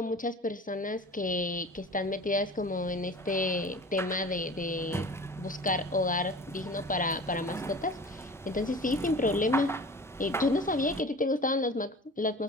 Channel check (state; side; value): normal; both; correlation 0.40